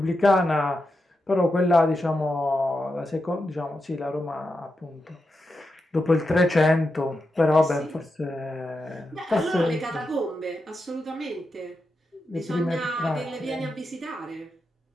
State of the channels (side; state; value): both; normal; correlation 0.88